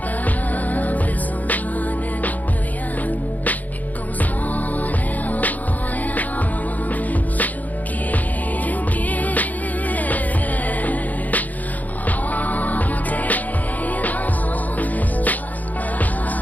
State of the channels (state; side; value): late; right; 0.080 ms